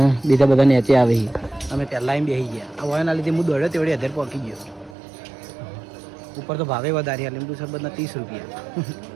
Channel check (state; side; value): drops out; left; at 5.0 s